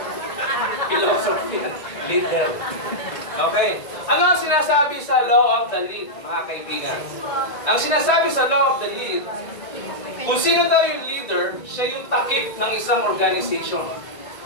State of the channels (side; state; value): right; late; 1.9 ms